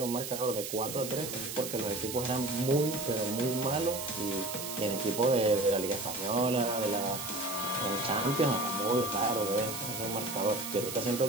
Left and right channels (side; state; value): right; noise; hiss, 6 dB below the sound